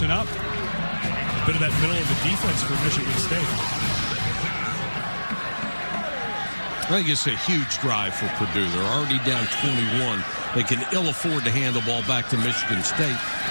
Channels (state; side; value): inverted; both; correlation -1.00